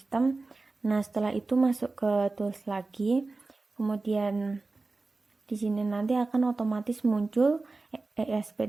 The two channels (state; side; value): quieter; left; 3.5 dB